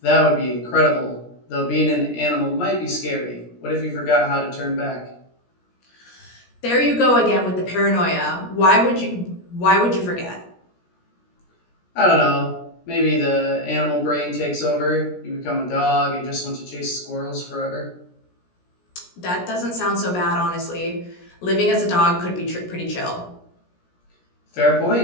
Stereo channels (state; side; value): late; right; 17 ms